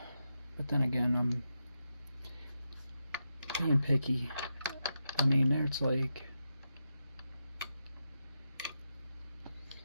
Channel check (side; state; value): both; inverted; correlation -0.87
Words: then again, I'm being picky. I mean, there's like